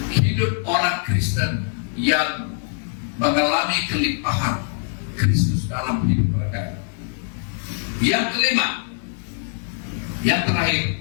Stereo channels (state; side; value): silent; right; digital silence